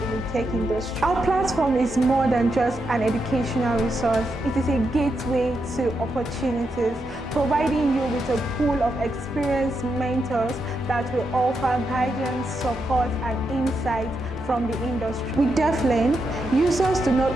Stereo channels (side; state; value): both; normal; correlation 0.84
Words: in the tech industry. Our platform is more than just an educational resource. It is a gateway to opportunities, providing you with a pool of experienced mentors that will offer guidance, support, and insight from the industry. With DeafLearn, users do not